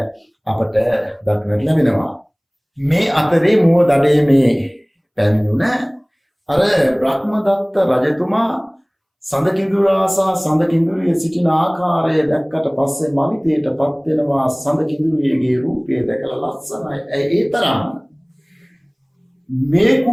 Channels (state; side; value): identical; both; correlation 1.00